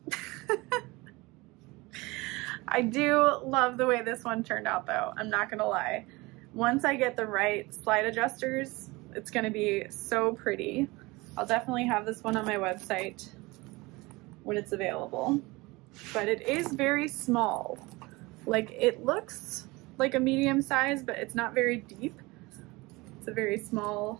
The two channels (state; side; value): quieter; left; 23.0 dB